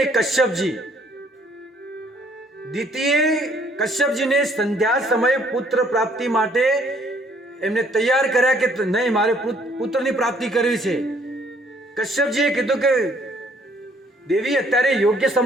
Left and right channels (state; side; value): normal; both; correlation 0.63